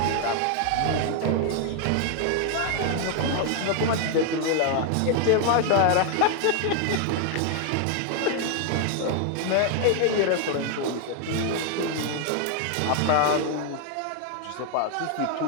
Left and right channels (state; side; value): different; both; correlation 0.00